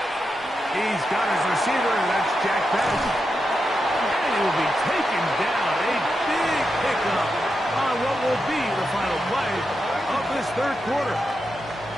He's got his receiver, and that's Jack Penix. And he will be taken down. A big pickup on what will be the final play of this 3rd quarter.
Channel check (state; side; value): normal; both; correlation 0.87